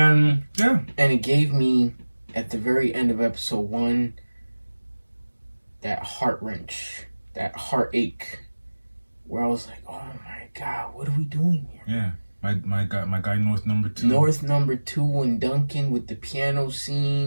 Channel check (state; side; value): inverted; both; correlation -1.00